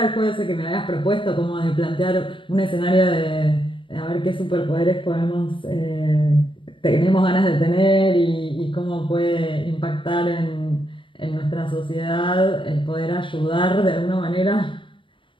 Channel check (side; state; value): right; late; 0.25 ms